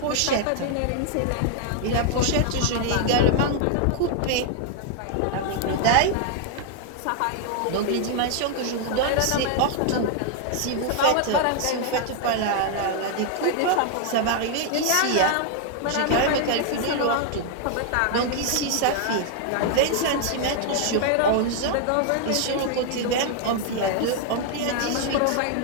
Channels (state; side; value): different; both; correlation 0.00